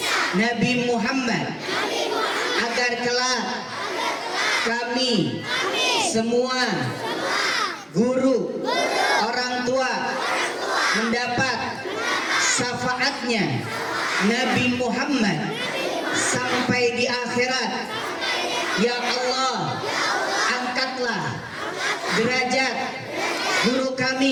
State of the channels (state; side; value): identical; both; correlation 1.00